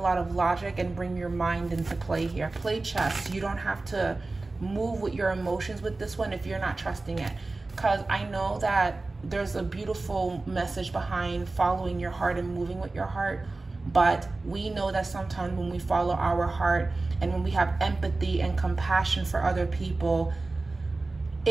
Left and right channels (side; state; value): left; quieter; 3.3 dB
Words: of logic and bring your mind into play here. Play chess. You don't have to move with your emotions with this one if you're not trusting it. Because I know that there's a beautiful message behind following your heart and moving with your heart. But we know that sometimes when we follow our heart and when we have empathy and compassion for other people,